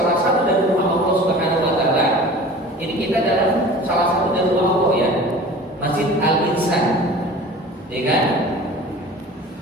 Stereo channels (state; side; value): normal; both; correlation 0.41